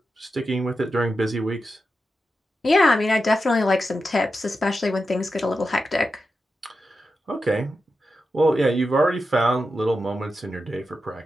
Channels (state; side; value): normal; both; correlation 0.89